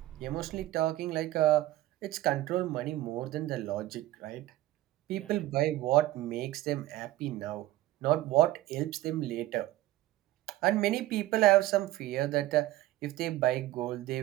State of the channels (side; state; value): left; quieter; 15.9 dB